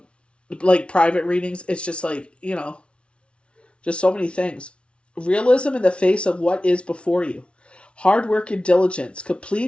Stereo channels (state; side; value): late; right; 0.059 ms